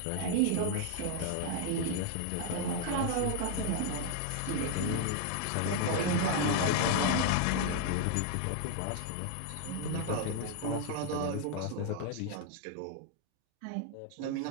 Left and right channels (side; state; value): both; different; correlation 0.00